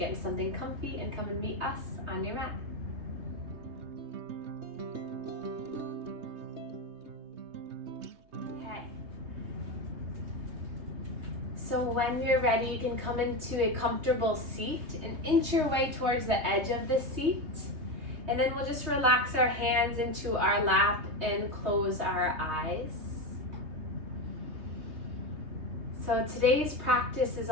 into something comfy and come and meet us on your mat. Okay. So when you're ready, you can come into a comfortable seat and inch your way towards the edge of the seat. And then we'll just relax our hands into our lap and close our eyes. So today's practice is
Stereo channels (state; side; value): late; left; 3.2 ms